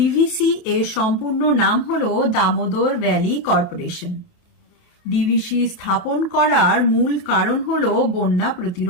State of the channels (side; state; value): right; late; 28 ms